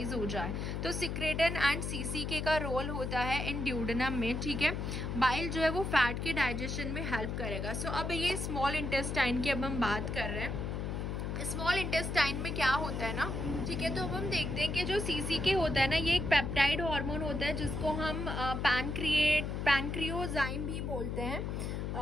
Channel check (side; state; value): left; noise; hum, 3 dB below the sound